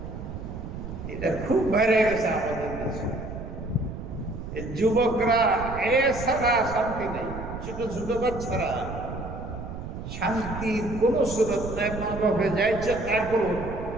এটা খুব বেড়ে গেছে আমাদের দেশে। যুবকরা এ ছাড়া শান্তি নেই, ছোট ছোট বাচ্চারা শান্তির কোনো সুরত নাই। মা বাপে যাইছে, তারপর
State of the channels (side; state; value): right; noise; rumble, 9 dB below the sound